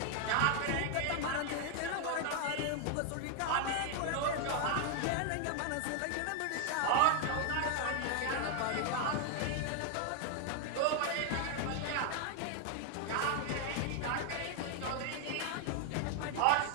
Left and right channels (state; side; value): different; both; correlation 0.00